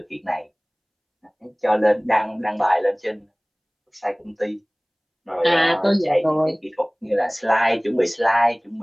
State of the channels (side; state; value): both; identical; correlation 1.00